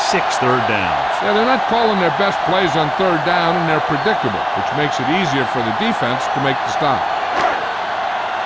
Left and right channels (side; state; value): both; identical; correlation 1.00